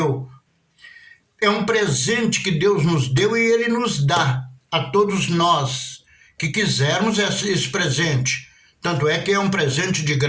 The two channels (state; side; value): identical; both; correlation 1.00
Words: É um presente que Deus nos deu e Ele nos dá a todos nós que quisermos esse presente. Tanto é que é um presente de